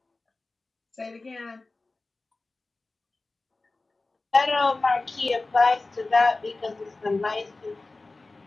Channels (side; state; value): right; quieter; 3.4 dB